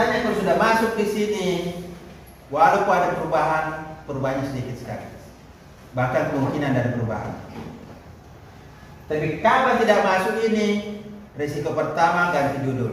kalau sudah masuk di sini, walaupun ada perubahannya sedikit sekali, bahkan kemungkinan ada perubahan. Tapi kalau tidak masuk ini, risiko pertama ganti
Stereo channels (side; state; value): both; identical; correlation 1.00